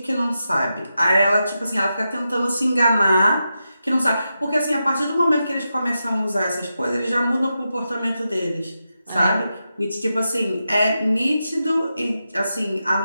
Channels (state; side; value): inverted; both; correlation -0.88